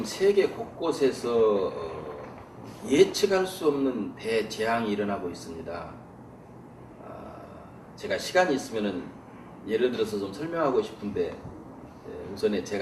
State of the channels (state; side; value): identical; both; correlation 1.00